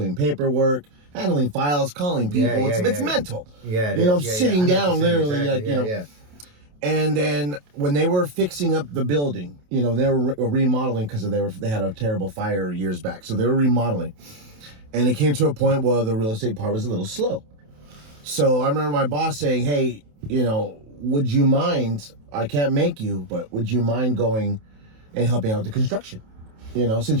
paperwork, handling files, calling people. It's mental. Yeah, it you know, is. I'm sitting down literally, exactly. like, you know. Yeah. And then when they were fixing up the building, you know, they were remodeling because they had a terrible fire years back. So they were remodeling. And it came to a point where the real estate part was a little slow. So I remember my boss saying, hey, you know, would you mind, I can't make you, but would you mind going and helping out with the construction? You know,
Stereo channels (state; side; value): late; left; 28 ms